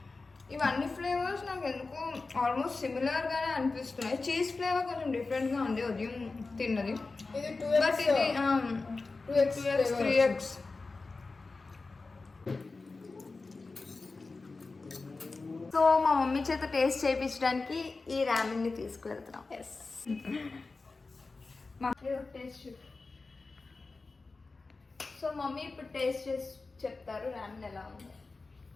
ఇవన్నీ ఫ్లేవర్స్ నాకు ఎందుకు ఆల్మోస్ట్ సిమిలర్గానే అనిపిస్తున్నాయి. చీజ్ ఫ్లేవర్ కొంచెం డిఫరెంట్గా ఉంది ఉదయం తిన్నది. ఇది బట్ ఇది 2x 3x. సో మా మమ్మీ చేత టేస్ట్ చేయించడానికి ఈ రామెన్ని తీసుకువెళ్తున్నాం. Yes, taste. సో మమ్మీ ఇప్పుడు టేస్ట్ చేసి చెప్తారు రామెన్ ఎలా ఉంది.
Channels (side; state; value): right; quieter; 3.8 dB